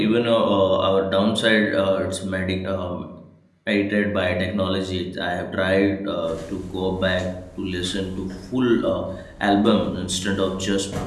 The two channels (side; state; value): both; identical; correlation 1.00